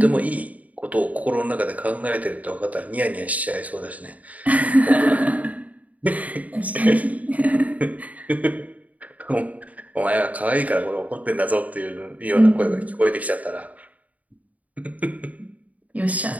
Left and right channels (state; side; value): late; left; 0.072 ms